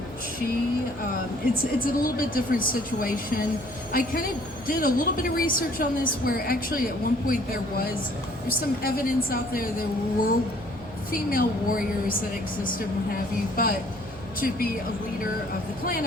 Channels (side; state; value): right; noise; hum, 19 dB below the sound